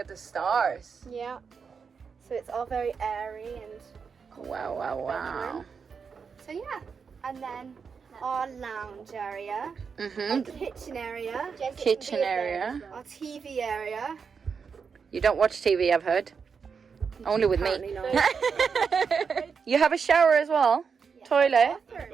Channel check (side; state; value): left; quieter; 5.9 dB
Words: the stars. Yeah. So it's all very airy and Wow, wow, wow. so yeah. And then our lounge area, our Mm-hmm. kitchen area, Kitchen area. our TV area. You don't watch TV, I've heard. Only with me. Apparently not. You have a shower as well? Toilet?